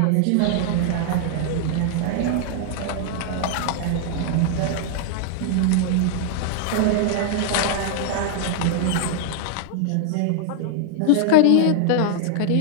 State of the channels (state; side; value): different; both; correlation 0.00